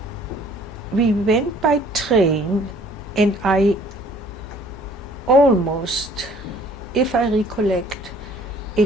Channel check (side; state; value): both; normal; correlation 0.56